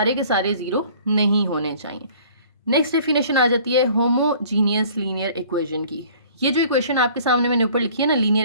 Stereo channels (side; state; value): both; inverted; correlation -0.52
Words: के सारे जीरो नहीं होने चाहिए। नेक्स्ट डेफिनेशन आ जाती है होमोजीनियस लीनियर इक्वेशन की। ये जो इक्वेशन आपके सामने मैंने ऊपर लिखी है ना, लीनियर